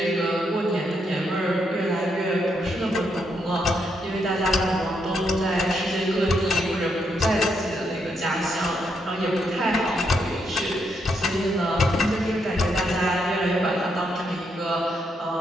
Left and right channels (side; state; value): both; normal; correlation 0.78